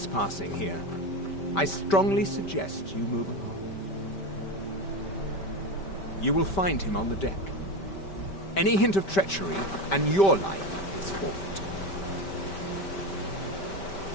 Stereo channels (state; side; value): late; right; 5.1 ms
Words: here. I strongly suggest you move along. You will find him on the deck. Any hint of treachery, and your life is forfeit.